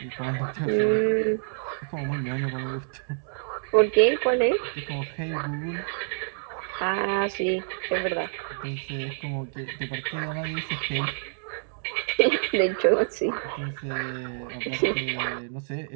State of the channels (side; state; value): left; silent; digital silence